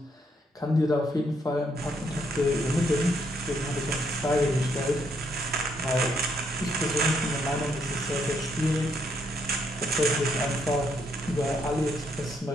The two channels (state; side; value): normal; both; correlation 0.73